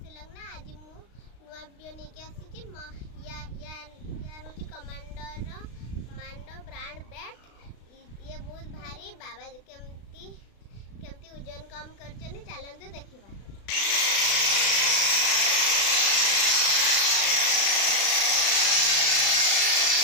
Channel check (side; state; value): right; late; 36 ms